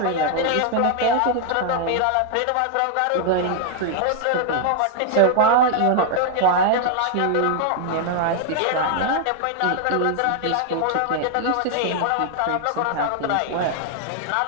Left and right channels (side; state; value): both; different; correlation 0.00